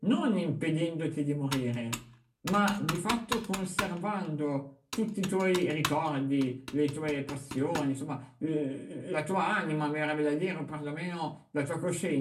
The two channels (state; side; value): identical; both; correlation 1.00